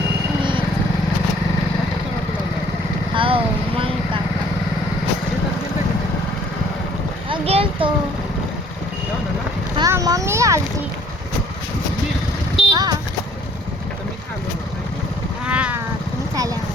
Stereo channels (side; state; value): both; normal; correlation 0.58